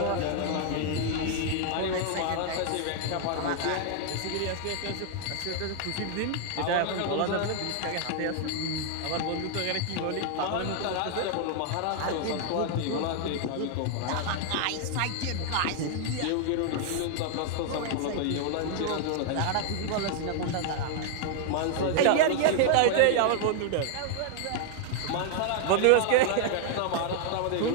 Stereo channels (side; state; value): both; different; correlation 0.00